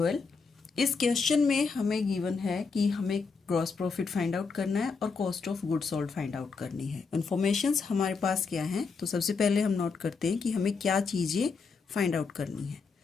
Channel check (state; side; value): quieter; right; 4.9 dB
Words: इस question में हमें गिवन है कि हमें ग्रॉस प्रॉफिट फाइंड आउट करना है और cost of goods sold find out करनी है। इन्फॉर्मेशंस हमारे पास क्या है, तो सबसे पहले हम नोट करते हैं कि हमें क्या चीज़ें फाइंड आउट करनी है।